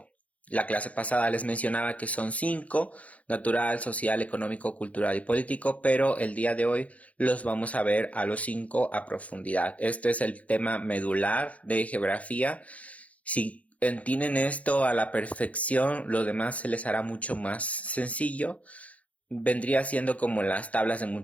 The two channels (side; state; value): right; late; 0.067 ms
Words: La clase pasada les mencionaba que son 5: natural, social, económico, cultural y político, pero el día de hoy los vamos a ver a los 5 a profundidad. Este es el tema medular de geografía. Si entienden esto a la perfección, lo demás se les hará mucho más sencillo. Vendría siendo como las tablas de